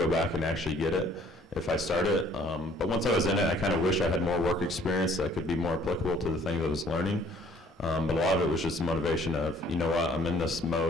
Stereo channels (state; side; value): normal; both; correlation 0.58